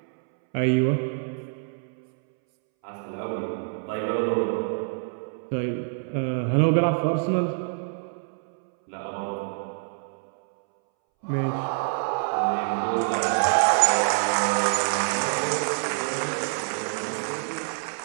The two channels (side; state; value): left; silent; 61 dB below the other